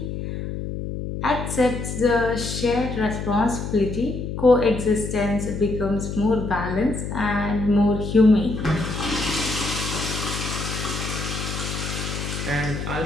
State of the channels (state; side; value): noise; left; hum, 5 dB below the sound